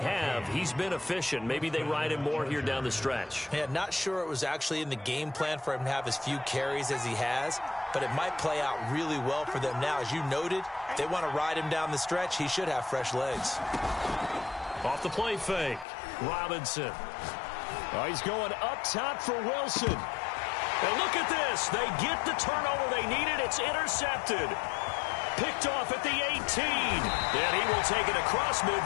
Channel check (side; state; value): right; drops out; at 15.9 s